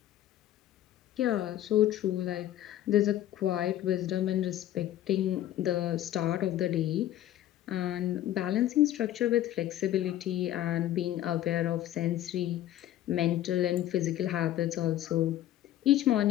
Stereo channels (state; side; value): quieter; right; 13.0 dB